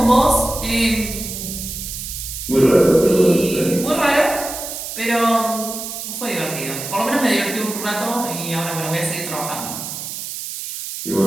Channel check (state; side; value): noise; right; hiss, 7 dB below the sound